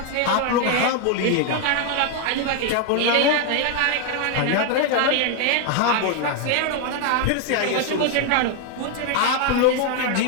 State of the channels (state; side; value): different; both; correlation 0.01